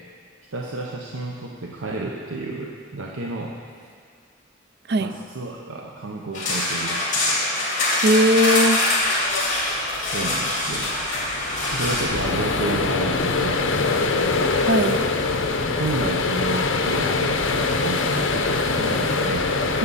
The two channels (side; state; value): both; normal; correlation 0.13